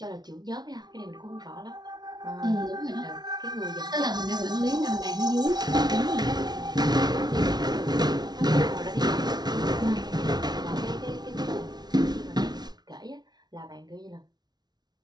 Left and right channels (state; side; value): late; left; 0.19 ms